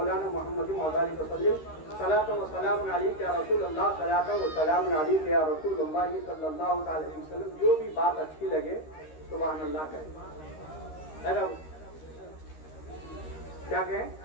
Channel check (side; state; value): right; late; 13 ms